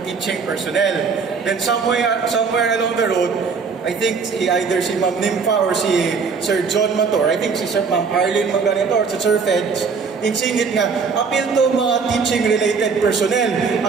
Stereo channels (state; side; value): quieter; left; 5.3 dB